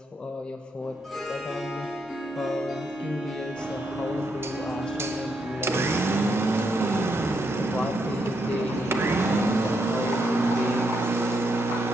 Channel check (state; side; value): normal; both; correlation 0.79